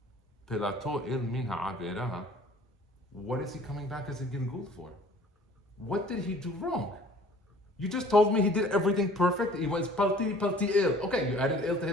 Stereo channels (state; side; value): normal; both; correlation 0.51